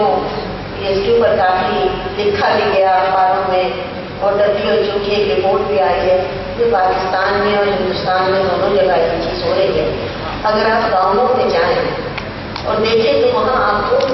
اس کے اوپر کافی لکھا بھی گیا اخباروں میں اور WHO کی ایک رپورٹ بھی آئی ہے کہ پاکستان میں اور ہندوستان میں دونوں جگہ یہ چیز ہو رہی ہے. اگر آپ گاؤں میں جائیں اور دیکھیں تو وہاں آپ کو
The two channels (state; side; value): identical; both; correlation 1.00